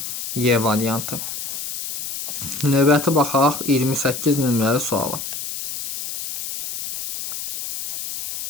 Y variantı. Növbəti baxaq 28 nömrəli suala.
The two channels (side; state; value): left; noise; hiss, 6 dB below the sound